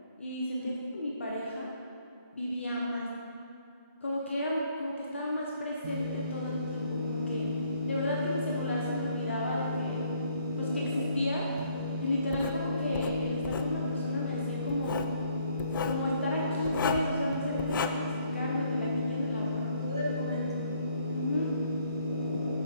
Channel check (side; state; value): both; inverted; correlation -0.66